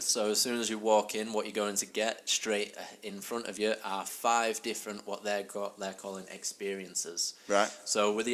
So as soon as you walk in, what you're going to get straight in front of you are 5 different what they're calling experiences. Right. So with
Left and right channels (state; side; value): identical; both; correlation 1.00